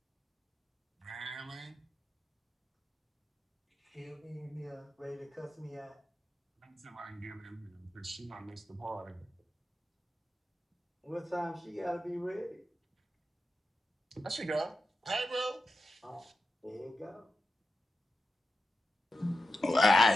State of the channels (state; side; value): normal; both; correlation 0.90